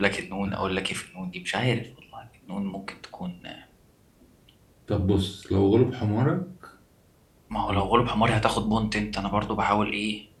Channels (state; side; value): identical; both; correlation 1.00